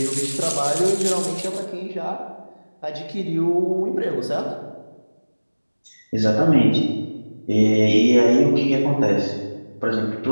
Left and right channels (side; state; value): both; inverted; correlation -1.00